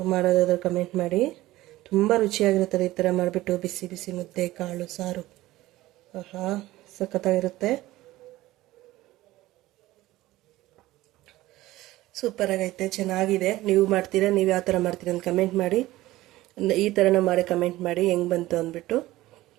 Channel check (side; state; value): left; quieter; 17.1 dB